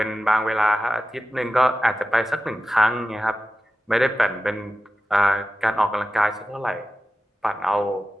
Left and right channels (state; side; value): normal; both; correlation 0.93